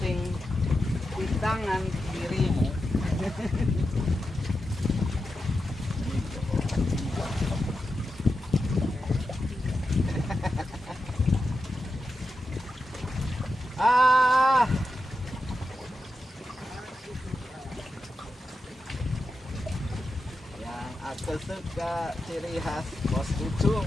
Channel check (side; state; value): both; normal; correlation 0.89